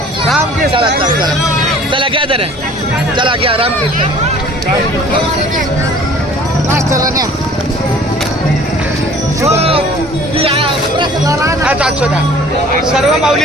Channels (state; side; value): normal; both; correlation 0.50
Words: रामकृष्ण. चला घ्या जरा. चला घ्या रामकृष्ण. चला न्या. सर्व